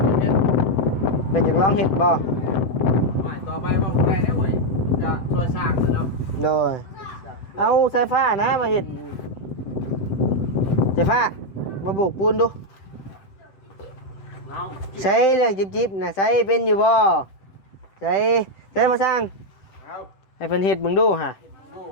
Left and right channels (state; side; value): late; right; 7.8 ms